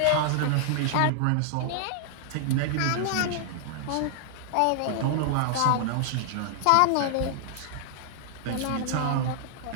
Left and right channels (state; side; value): different; both; correlation -0.01